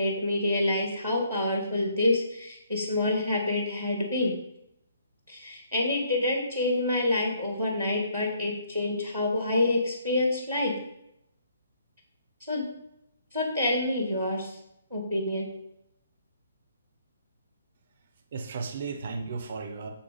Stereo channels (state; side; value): inverted; both; correlation -0.67